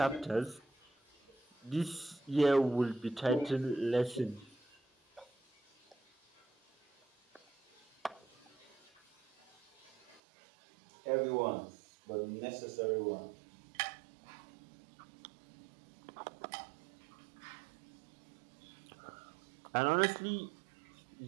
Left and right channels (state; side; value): drops out; left; at 10.2 s